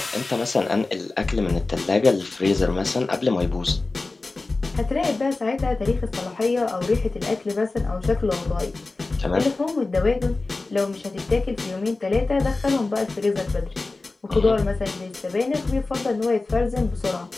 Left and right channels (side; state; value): right; quieter; 3.4 dB